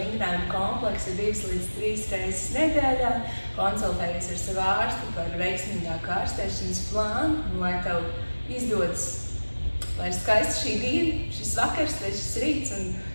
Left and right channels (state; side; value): inverted; both; correlation -1.00